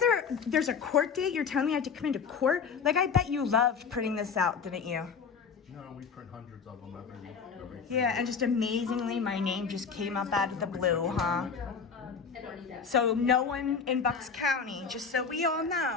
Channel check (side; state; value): right; quieter; 5.9 dB